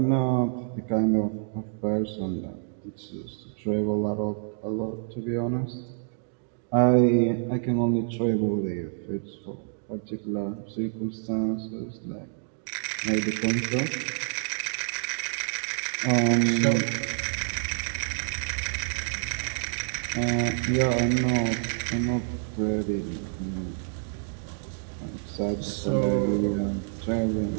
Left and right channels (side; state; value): left; silent; digital silence